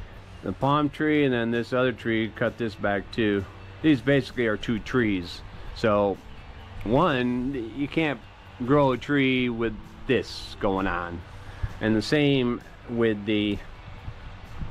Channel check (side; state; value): both; identical; correlation 1.00